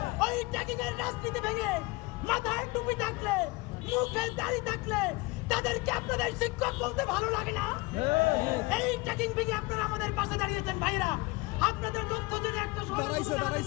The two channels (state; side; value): quieter; right; 23.9 dB